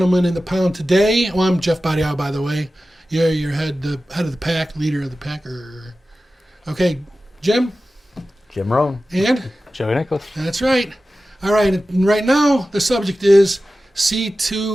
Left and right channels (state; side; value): normal; both; correlation 0.95